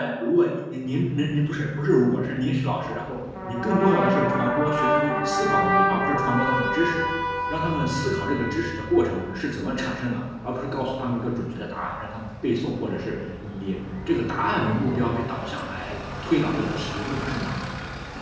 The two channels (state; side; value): identical; both; correlation 1.00